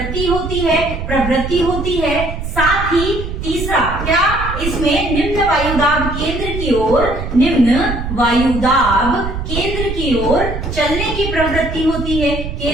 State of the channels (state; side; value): noise; right; rumble, 6 dB below the sound